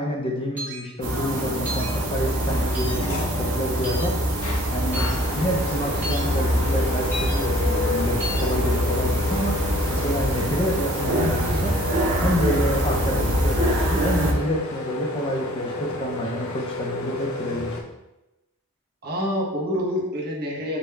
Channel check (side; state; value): both; normal; correlation 0.54